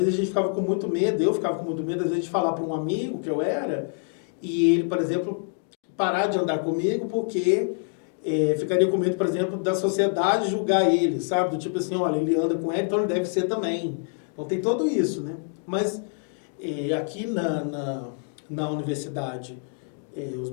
a gente ficava com muito medo, eu ficava com muito medo, às vezes, de falar para um amigo que eu era, e ele, por exemplo, parar de andar comigo porque ficaria com medo, por exemplo, da sociedade julgar ele, sabe? Do tipo assim, olha, ele anda com ele, então ele deve ser também. Então tem tudo isso, né? Mas aqui na universidade, os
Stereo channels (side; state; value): right; silent; 61 dB below the other